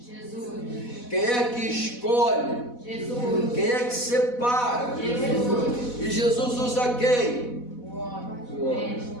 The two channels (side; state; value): right; late; 4.1 ms